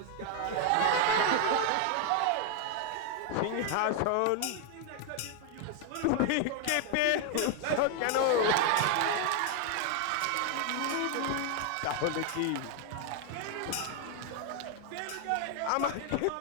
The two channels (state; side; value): different; both; correlation 0.00